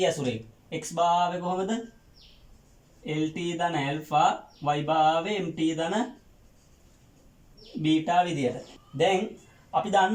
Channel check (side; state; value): both; identical; correlation 1.00